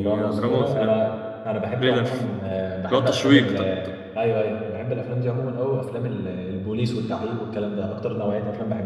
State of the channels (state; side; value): identical; both; correlation 1.00